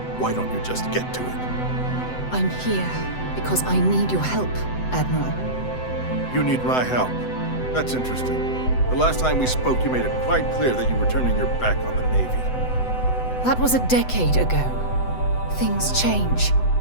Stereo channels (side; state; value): right; late; 7.9 ms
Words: why don't you just get to it? I'm here because I need your help, Admiral. You need my help. That's interesting. The last time we spoke, you made it quite clear that you were turning your back on the Navy. That was a decade ago. Things change.